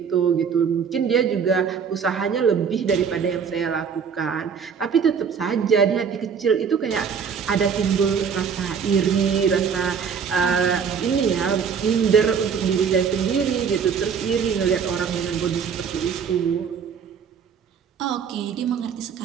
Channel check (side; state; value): left; quieter; 6.7 dB